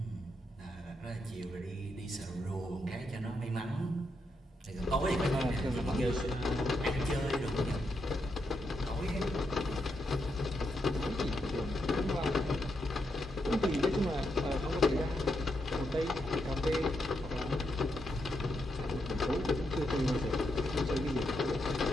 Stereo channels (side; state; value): both; normal; correlation 0.82